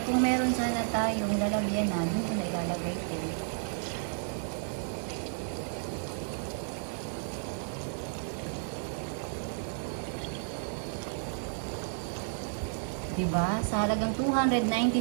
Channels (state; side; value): silent; left; digital silence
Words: kung meron sana tayong lalagyan na, dito na ilalagay ito. Diba? Sa halagang